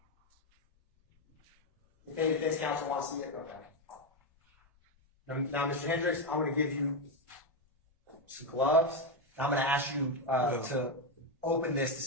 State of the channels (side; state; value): both; normal; correlation 0.07